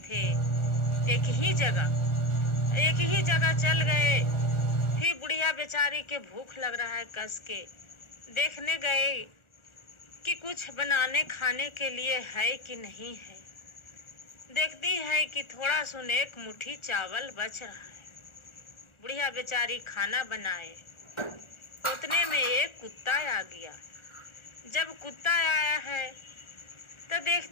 एक ही जगह चल गए। फिर बुढ़िया बेचारी के भूख लग रहा है, कस के देखने गए कि कुछ बनाने खाने के लिए है कि नहीं है। देखती है कि थोड़ा सुन एक मुट्ठी चावल बच रहा है। बुढ़िया बेचारी खाना बनाए, उतने में एक कुत्ता आ गया। जब कुत्ता आया है तो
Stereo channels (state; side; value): late; right; 1.4 ms